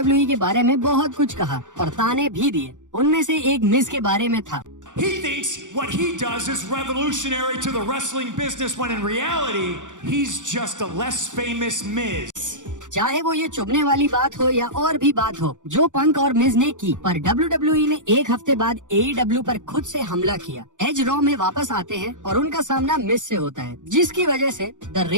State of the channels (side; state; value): left; late; 0.86 ms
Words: के बारे में बहुत कुछ कहा और ताने भी दिए। उनमें से एक मिज के बारे में था। He thinks what he does is revolutionary to the wrestling business when in reality he's just a less famous Miz. चाहे वो ये चुभने वाली बात हो या और भी बात हो जो पंक और मिज ने की, पर WWE ने एक हफ्ते बाद AEW पर खुद से हमला किया। एज रॉ में वापस आते हैं और उनका सामना मिज से होता है, जिसकी वजह से द